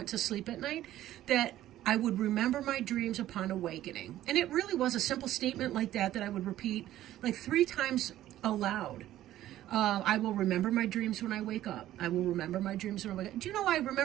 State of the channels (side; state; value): left; quieter; 13.6 dB